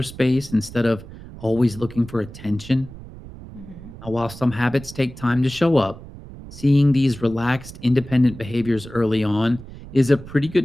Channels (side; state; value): right; noise; rumble, 15 dB below the sound